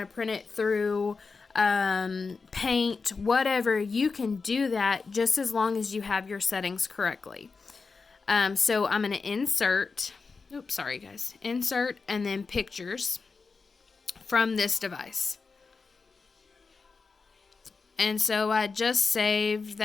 to print it through Paint, whatever, you can do that just as long as you have your settings correctly. So I'm going to insert, oops, sorry guys, insert and then pictures from this device. And so I just saved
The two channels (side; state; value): right; quieter; 4.6 dB